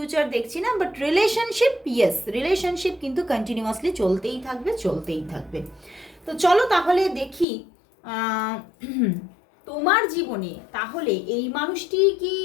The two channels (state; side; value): drops out; right; at 7.5 s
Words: দেখছি না। বাট রিলেশনশিপ, ইয়েস, রিলেশনশিপ কিন্তু কন্টিনিউয়াসলি চলতেই থাকবে, চলতেই থাকবে। তো চলো তাহলে দেখি তোমার জীবনে তাহলে এই মানুষটি কি